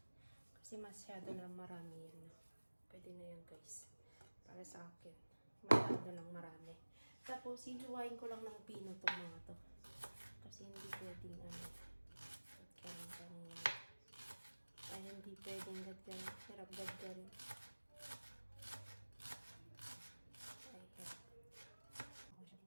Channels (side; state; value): both; inverted; correlation -1.00